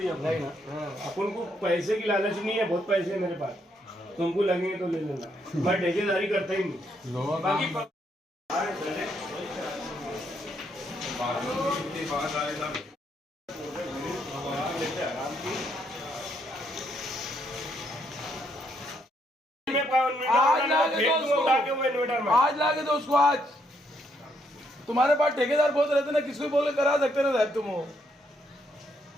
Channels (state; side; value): normal; both; correlation 0.74